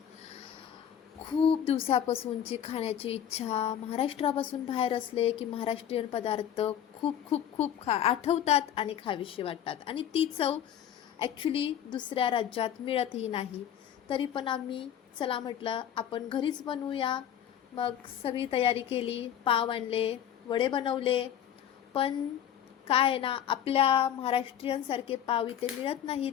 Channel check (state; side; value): quieter; right; 9.9 dB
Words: खूप दिवसापासूनची खाण्याची इच्छा. महाराष्ट्रापासून बाहेर असले की महाराष्ट्रीयन पदार्थ खूप खूप खूप आठवतात आणि खावीशी वाटतात, आणि ती चव ॲक्च्युली दुसऱ्या राज्यात मिळतही नाही. तरी पण आम्ही चला म्हटलं आपण घरीच बनवूया. मग सगळी तयारी केली, पाव आणले, वडे बनवले. पण काय आहे ना, आपल्या महाराष्ट्रीयनसारखे पाव इथे मिळत नाहीत.